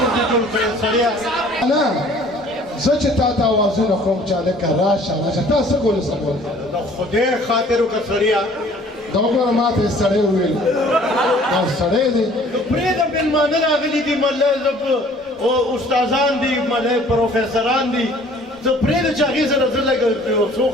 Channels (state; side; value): normal; both; correlation 0.53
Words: نه زه چې تا ته اوازونه کوم چې هلکه راشه راشه تا څه ګولې څه ګولې د خدای خاطر وکړه سړیه دا وګوره ما ته یې سړی وویل دا سړی دی پرېږده مېلمانه راغلي دي مله استادان دي مله پروفیسران دي زه پرېږده چې هغې سره زه لږ یو څو